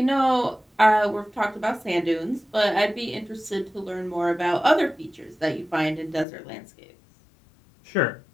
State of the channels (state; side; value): drops out; right; at 6.2 s